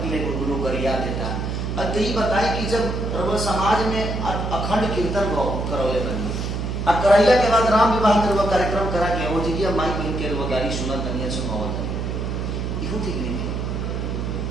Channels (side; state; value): right; noise; hum, 3 dB below the sound